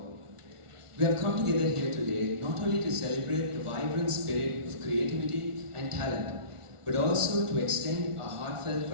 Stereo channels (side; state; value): left; late; 1.4 ms